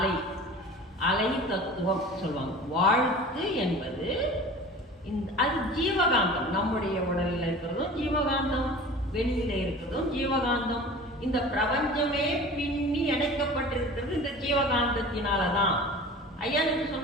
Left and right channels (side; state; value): both; normal; correlation 0.39